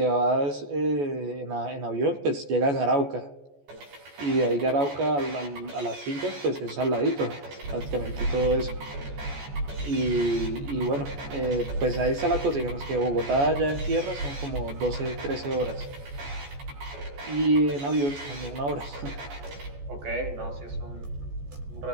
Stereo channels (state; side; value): late; left; 14 ms